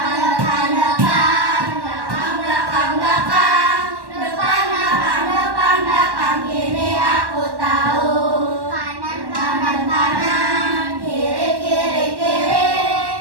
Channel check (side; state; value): left; late; 1.1 ms